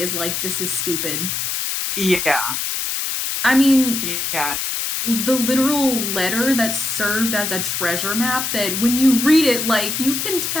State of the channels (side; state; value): left; noise; hiss, 2 dB below the sound